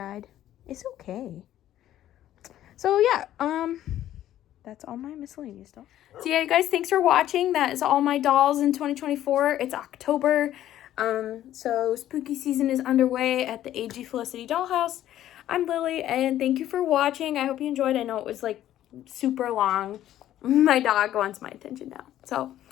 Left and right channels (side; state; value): right; quieter; 12.6 dB